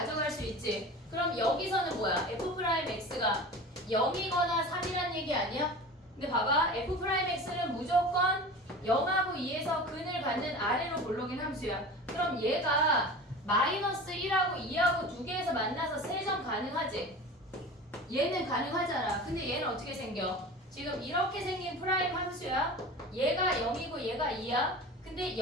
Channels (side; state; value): both; normal; correlation 0.35